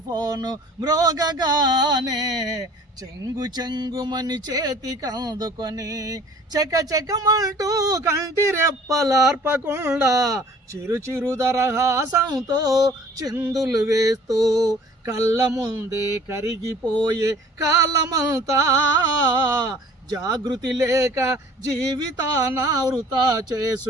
ఫోను మ్రోగగానే, చెంగు చెంగుమని చేతికందుకొని చెక చెకమంటూ కంటి రెప్పలార్పకుండా చిరు చిరు దరహాసంతో చిందులు వేస్తూ కళ్ళ ముందే కరిగిపోయే కాలమంతా జాగృతి లేక జీవితాన వృతా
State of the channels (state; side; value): normal; both; correlation 0.51